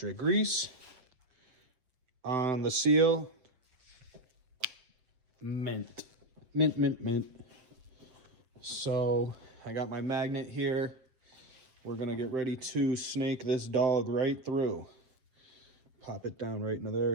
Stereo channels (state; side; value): late; left; 7.8 ms